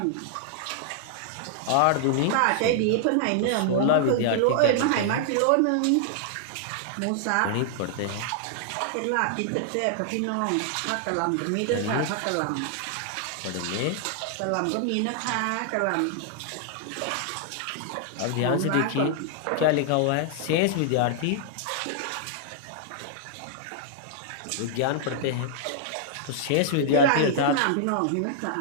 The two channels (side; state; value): both; different; correlation -0.01